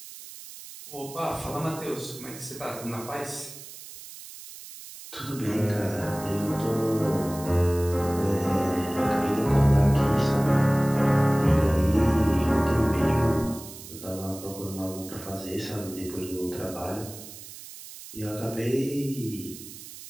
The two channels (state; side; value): noise; right; hiss, 15 dB below the sound